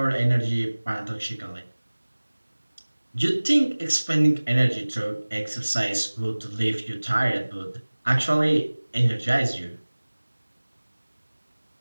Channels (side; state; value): both; inverted; correlation -1.00